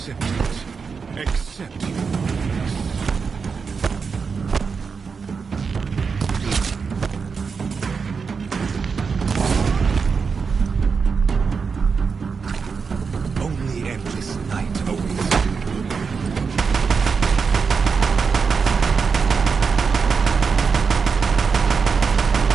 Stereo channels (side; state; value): left; quieter; 5.4 dB